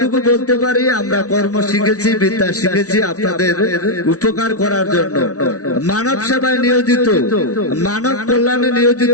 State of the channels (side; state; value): right; late; 0.67 ms